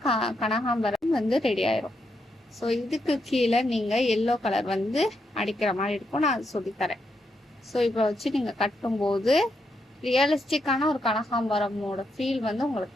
கனகாம்பரம் வந்து ரெடி ஆயிரும். ஸோ இதுக்கு கீழே நீங்க எல்லோ கலர் வந்து அடிக்கிற மாதிரி இருக்கும். நான் அது சொல்லித்தரேன். ஸோ இப்போ வச்சு நீங்க கட்டும்போது ரியலிஸ்டிக்கான ஒரு கனகாம்பரமோட ஃபீல் வந்து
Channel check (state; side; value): normal; both; correlation 0.81